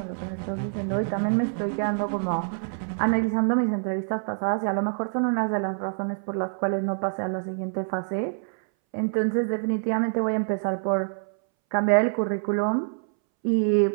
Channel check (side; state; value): left; silent; 61 dB below the other